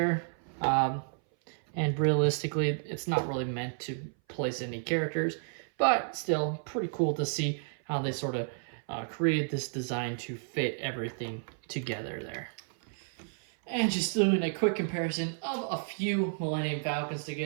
And realistically, it's not really meant to place any characters, but still pretty cool to see how they sort of created this design to fit everything together there. And just doing a quick comparison of a few Millennium Falcons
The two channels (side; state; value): left; silent; 57 dB below the other